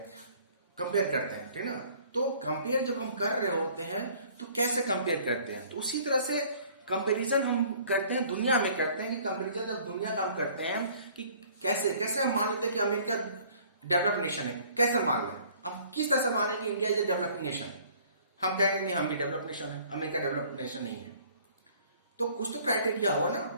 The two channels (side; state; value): both; inverted; correlation -0.55